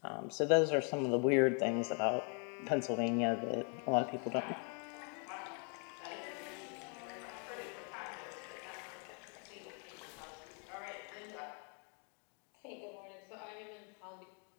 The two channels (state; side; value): quieter; right; 39.7 dB